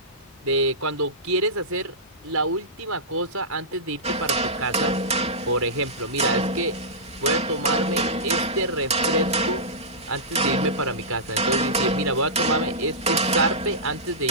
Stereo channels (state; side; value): normal; both; correlation -0.16